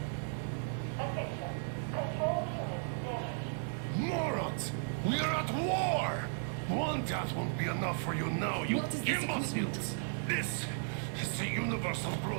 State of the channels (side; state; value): left; silent; digital silence